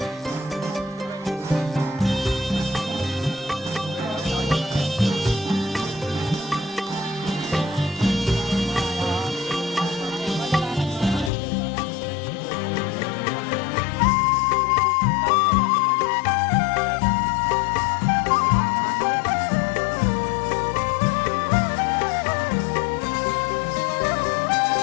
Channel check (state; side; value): drops out; right; at 11.3 s